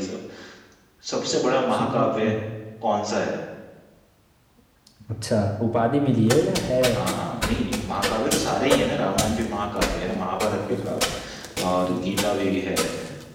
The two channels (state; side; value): identical; both; correlation 1.00